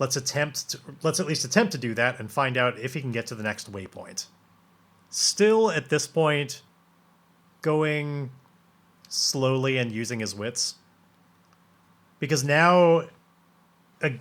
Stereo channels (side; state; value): both; identical; correlation 1.00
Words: at least attempt to do that and find out if he can get to the next waypoint. Still, at this point, going slowly and using his wits. Because now,